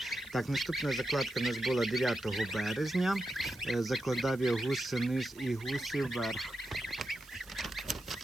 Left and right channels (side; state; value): right; noise; hiss, 22 dB below the sound